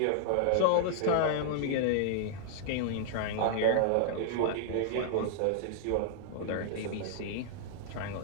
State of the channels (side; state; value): both; different; correlation -0.01